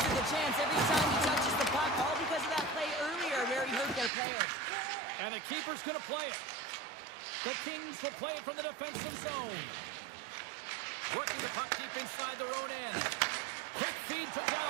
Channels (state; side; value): drops out; left; at 4.1 s